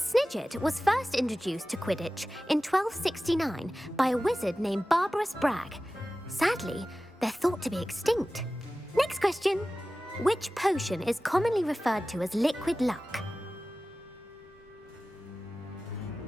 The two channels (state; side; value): normal; both; correlation 0.96